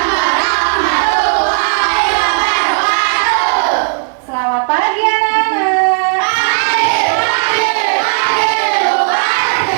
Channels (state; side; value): silent; left; digital silence